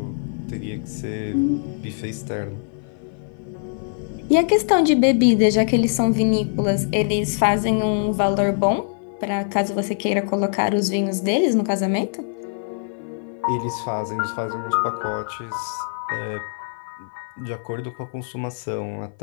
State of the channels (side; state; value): right; silent; 56 dB below the other